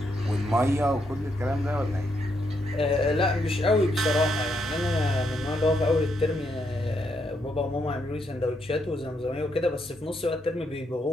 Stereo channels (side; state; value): both; normal; correlation 0.78